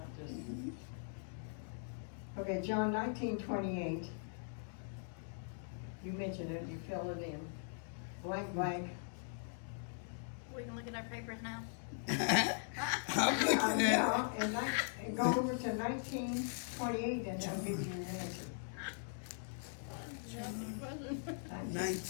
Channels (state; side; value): silent; right; digital silence